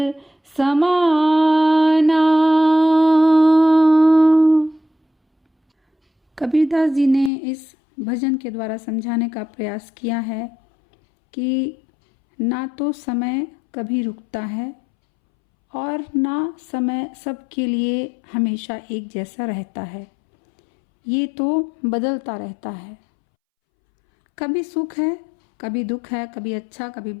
समाना। कबीरदास जी ने इस भजन के द्वारा समझाने का प्रयास किया है कि ना तो समय कभी रुकता है और ना समय सबके लिए हमेशा एक जैसा रहता है, ये तो बदलता रहता है। कभी सुख है, कभी दुख है, कभी अच्छा कभी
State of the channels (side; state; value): right; drops out; at 7.3 s